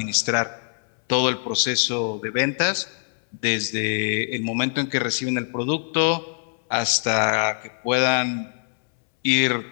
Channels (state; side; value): silent; right; 63 dB below the other